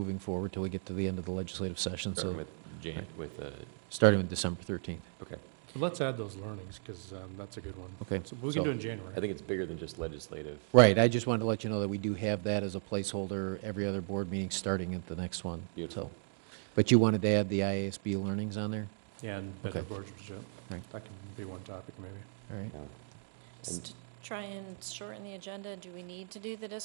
forward till we get to the end of the legislative session, so. Starting with December 13th. Okay. So let's add those learnings, because that's a good one. Okay. So we can do it in January. I think it's bigger than just legislative. Right, I just wanted to let you know that we do have that as a placeholder every other board meeting starting at the next one. Beautiful. So, but you wanted to add the IASB learnings on there? Yeah, and better Okay. boardsmanship. Right. That can be one topic, maybe. All right. Just to try and shorten the agenda, do we need to do the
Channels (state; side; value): silent; left; digital silence